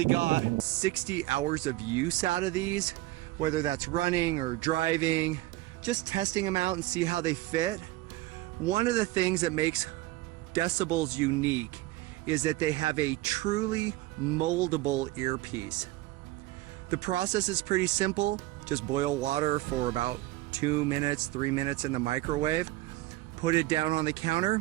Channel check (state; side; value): quieter; left; 18.3 dB